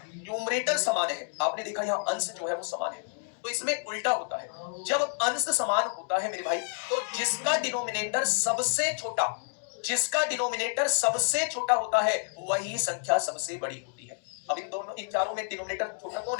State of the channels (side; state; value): right; silent; 56 dB below the other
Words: न्यूमरेटर समान है, आपने देखा यहाँ अंश जो है वो समान है, तो इसमें उल्टा होता है। जब अंश समान होता है मेरे भाई, तो जिसका डिनोमिनेटर सबसे छोटा होता है वही संख्या सबसे बड़ी होती है। अब इन चारों में डिनोमिनेटर छोटा कौन